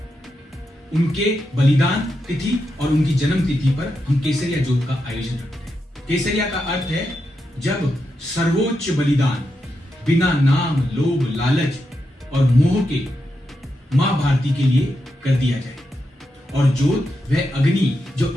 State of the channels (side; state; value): both; normal; correlation 0.86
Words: उनके बलिदान तिथि और उनकी जन्म तिथि पर हम केसरिया ज्योत का आयोजन करते हैं। केसरिया का अर्थ है जब सर्वोच्च बलिदान बिना नाम, लोभ, लालच और मोह के मां भारती के लिए कर दिया जाए, और ज्योत वह अग्नि जो